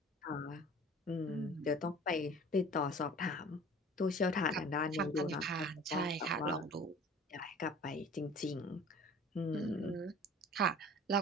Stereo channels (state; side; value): normal; both; correlation 0.45